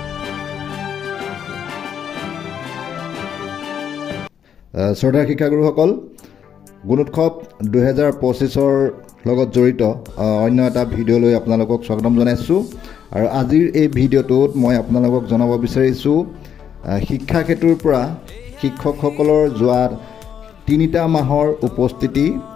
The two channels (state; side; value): quieter; right; 8.5 dB